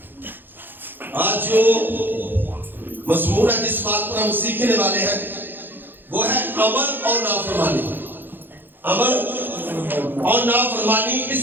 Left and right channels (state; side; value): late; left; 0.096 ms